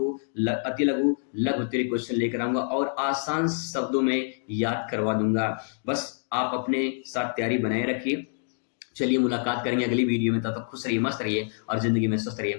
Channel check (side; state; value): right; silent; digital silence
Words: अति लघु लघु उत्तरीय क्वेश्चन लेकर आऊंगा और आसान शब्दों में याद करवा दूंगा। बस आप अपने साथ तैयारी बनाए रखिए। चलिए मुलाकात करेंगे अगली वीडियो में, तब तक खुश रहिए, मस्त रहिए और जिंदगी में स्वस्थ